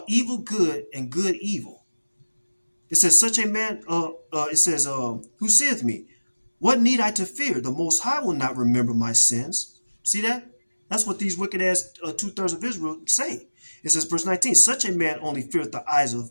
evil good and good evil. It says, such a man, who saith me, what need I to fear? The Most High will not remember my sins. See that? That's what these wicked ass 2/3 of Israel say. It says, verse 19, such a man only feareth the eyes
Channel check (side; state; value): both; inverted; correlation -1.00